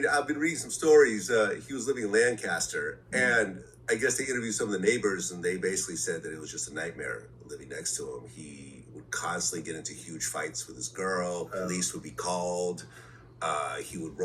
I've been reading some stories. He was living in Lancaster, and I guess they interviewed some of the neighbors, and they basically said that it was just a nightmare living next to him. He would constantly get into huge fights with his girl. Police would be called. He would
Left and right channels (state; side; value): identical; both; correlation 1.00